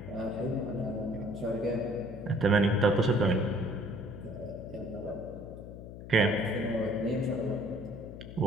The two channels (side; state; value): left; noise; hum, 12 dB below the sound